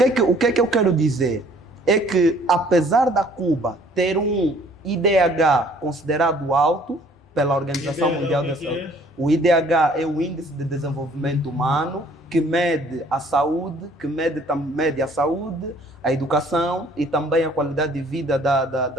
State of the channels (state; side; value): normal; both; correlation 0.57